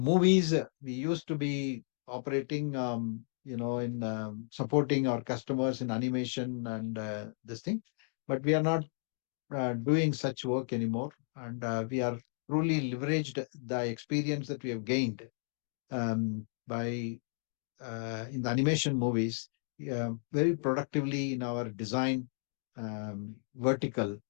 we used to be operating, in supporting our customers in animation and this thing, but we are not doing such work anymore. And we are truly leveraged the experience that we have gained by in the animation movies very productively in our design vertical,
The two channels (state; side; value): silent; right; digital silence